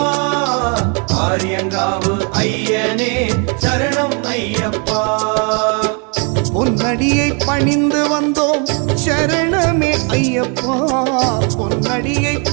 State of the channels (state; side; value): quieter; left; 36.5 dB